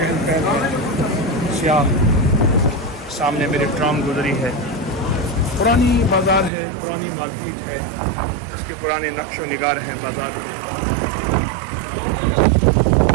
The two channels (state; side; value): drops out; left; at 6.5 s